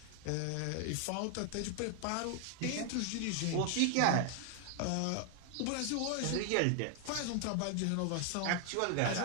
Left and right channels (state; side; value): different; both; correlation 0.00